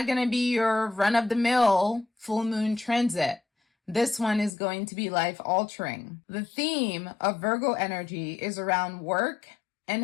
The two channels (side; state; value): right; drops out; at 4.5 s